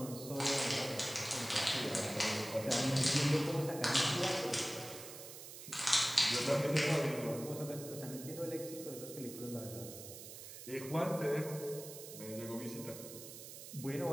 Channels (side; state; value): right; noise; hiss, 12 dB below the sound